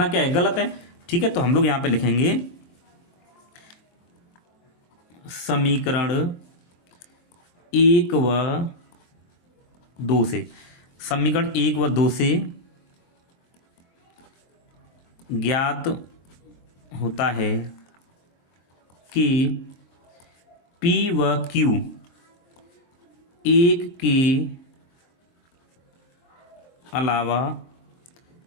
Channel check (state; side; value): late; right; 23 ms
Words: क्या है, गलत है। ठीक है, तो हम लोग यहाँ पे लिखेंगे समीकरण 1 व 2 से, समीकरण 1 व 2 से ज्ञात होता है कि P व Q 1 के अलावा